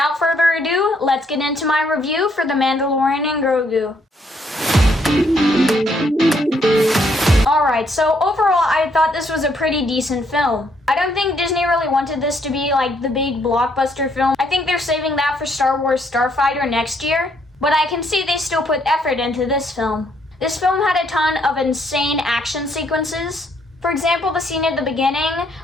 further ado, let's get into my review for The Mandalorian and Grogu. Alright, so overall, I thought this was a pretty decent film. I don't think Disney really wanted this to be like the big blockbuster film. I think they're saving that for Star Wars Starfighter next year. But I can see they still put effort into this film. This film had a ton of insane action sequences. For example, the scene at the beginning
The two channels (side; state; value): both; normal; correlation 0.71